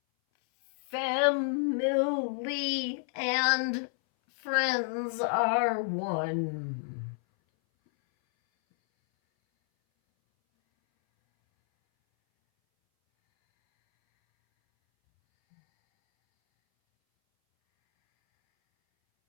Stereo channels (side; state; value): right; silent; 58 dB below the other